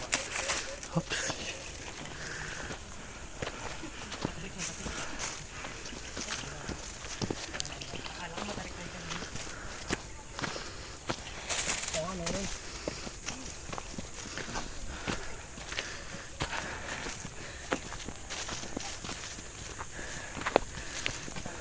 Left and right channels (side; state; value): both; identical; correlation 1.00